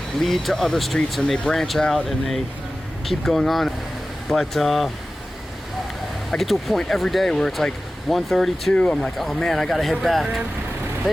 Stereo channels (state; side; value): normal; both; correlation 0.96